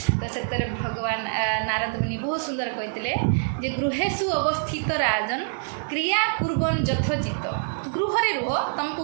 ତ ସେଥିରେ ଭଗବାନ ନାରଦ ମୁନି ବହୁତ ସୁନ୍ଦର କହିଥିଲେ ଯେ ଗୃହେଷୁ ଅବସ୍ଥିତ ରାଜନ କ୍ରିୟା କୁର୍ବନ ଯଥୋଚିତ। ଗୃହରେ ରୁହ, ତୁମକୁ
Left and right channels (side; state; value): left; silent; digital silence